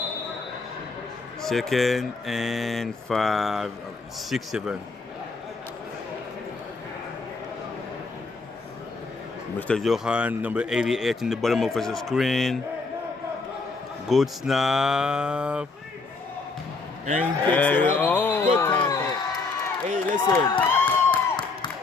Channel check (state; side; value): quieter; right; 4.0 dB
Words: Second and 5, 6, 7. Mr. Johan, number 88 in the bottom of the screen. Good snap. And he picks it up. Good tackle. Hey,